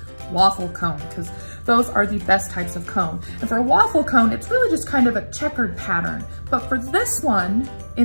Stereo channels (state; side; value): inverted; both; correlation -1.00